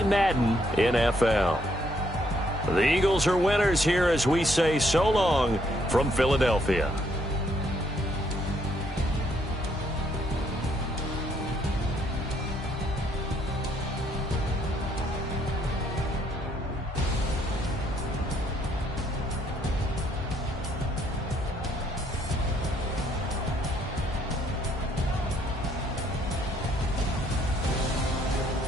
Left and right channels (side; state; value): both; normal; correlation 0.69